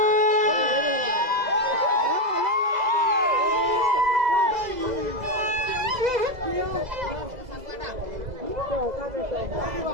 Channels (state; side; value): late; left; 2.0 ms